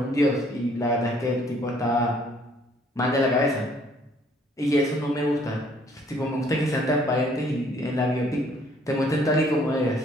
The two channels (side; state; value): both; normal; correlation 0.62